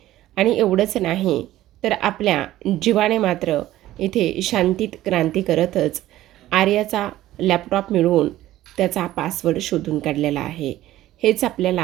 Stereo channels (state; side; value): quieter; left; 14.7 dB